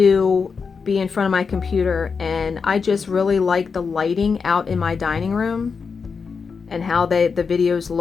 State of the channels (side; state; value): right; quieter; 5.4 dB